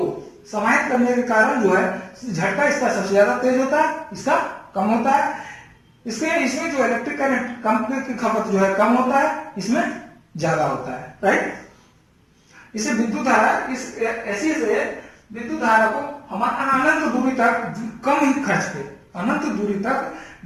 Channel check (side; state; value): both; identical; correlation 1.00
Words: समाहित करने के कारण जो है झटका इसका सबसे ज्यादा तेज होता है, इसका कम होता है। इसमें जो इलेक्ट्रिक करंट की खपत जो है कम होता है, इसमें ज्यादा होता है, राइट। इसे विद्युत धारा ऐसी से विद्युत धारा को हम अनंत दूरी तक कम ही खर्च पे, अनंत दूरी तक